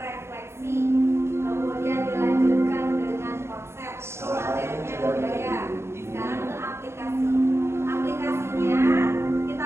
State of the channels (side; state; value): left; late; 0.13 ms